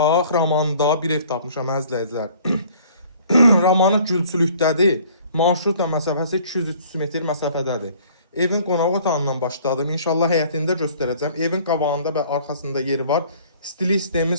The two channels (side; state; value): both; inverted; correlation -0.54